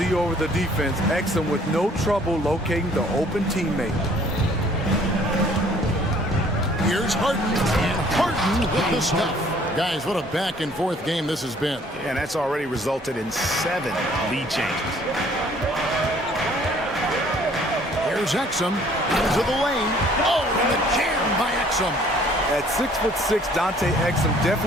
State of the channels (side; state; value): both; normal; correlation 0.58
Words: over the defense. Exum with no trouble locating the open teammate. Here's Harden. And Harden with the stuff. Guys, what a back-and-forth game this has been. And that's already resulted in 7 lead changes. Here's Exum into the lane. Oh, and the jam by Exum. At 6'6", Dante Exum